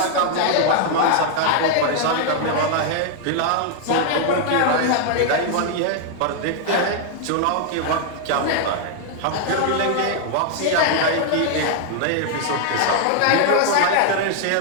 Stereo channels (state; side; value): different; both; correlation 0.00